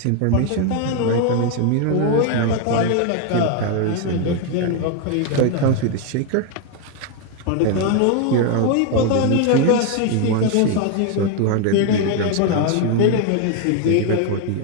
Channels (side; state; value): both; different; correlation 0.01